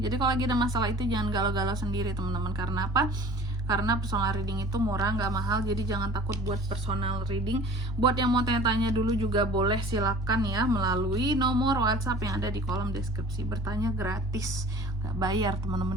kalau lagi ada masalah itu jangan galau-galau sendiri teman-teman. Karena apa? Karena personal reading itu murah, nggak mahal. Jadi jangan takut buat personal reading. Buat yang mau tanya-tanya dulu juga boleh, silakan ya melalui nomor WhatsApp yang ada di kolom deskripsi. Bertanya gratis, nggak bayar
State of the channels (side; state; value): both; normal; correlation 0.46